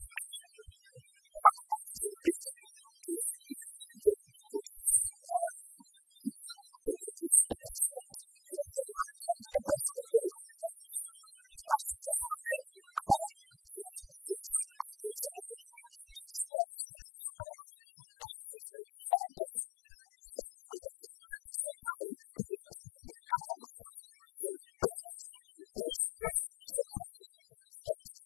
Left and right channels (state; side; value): drops out; right; at 16.5 s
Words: claim over the party. So yes, if we produce like they produce a president for a very long time in the person of Jerry John Rawlings, the party was founded under his ideals and all that is upon his ideals and all that. Now if we've produced that person, it's now been a long time. Went to Central region, they went to the other places. So basically, Mills was from the Central region. They've gone to the